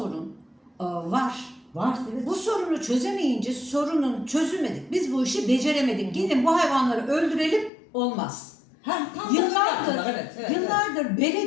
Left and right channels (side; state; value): right; drops out; at 7.7 s